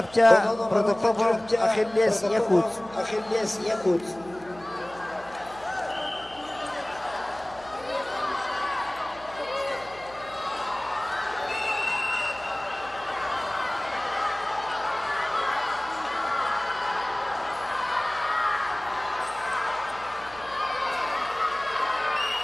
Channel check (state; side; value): noise; right; hum, 21 dB below the sound